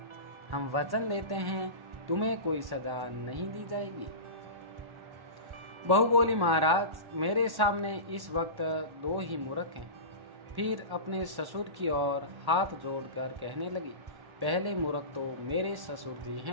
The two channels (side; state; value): left; late; 1.1 ms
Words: हम वचन लेते हैं तुम्हें कोई सजा नहीं दी जाएगी। बहू बोली, महाराज मेरे सामने इस वक्त दो ही मूर्ख हैं। फिर अपने ससुर की ओर हाथ जोड़कर कहने लगी, पहले मूर्ख तो मेरे ससुर जी